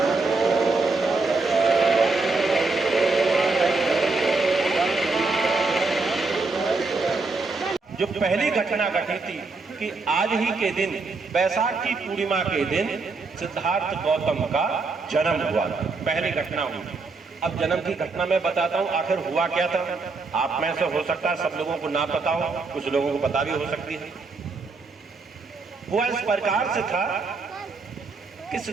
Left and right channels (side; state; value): left; quieter; 3.9 dB